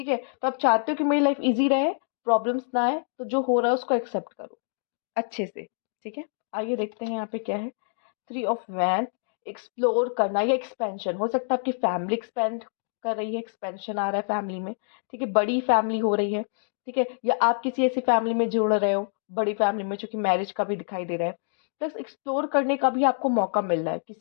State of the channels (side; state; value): right; silent; digital silence